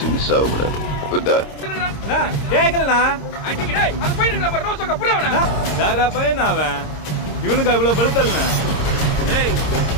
மிஸ் ஆகக்கூடாது. புரிதா? கேக்கலண்ணா அடிக்கடே அந்த பையனுக்கு நம்ம ரோசக்க புரியவனா தாரா பையன் அவன் இவனுக்கு இவ்வளவு பழுத்தல்ண்ணா. ஏய்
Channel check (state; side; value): late; right; 26 ms